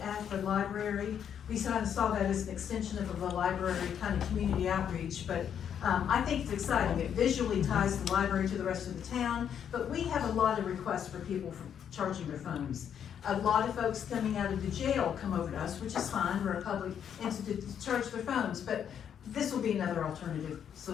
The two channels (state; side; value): quieter; right; 8.6 dB